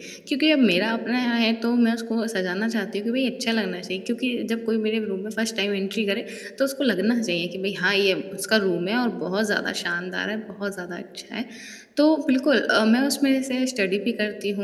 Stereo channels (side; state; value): both; identical; correlation 1.00